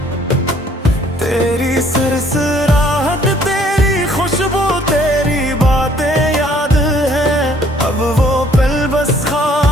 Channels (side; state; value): both; normal; correlation 0.61